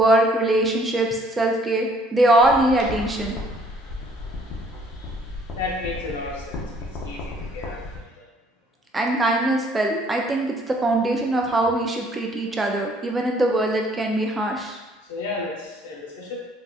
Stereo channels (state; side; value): normal; both; correlation 0.61